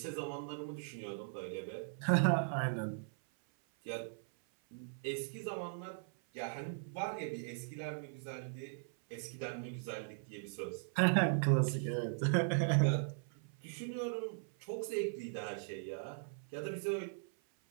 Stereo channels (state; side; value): silent; left; 52 dB below the other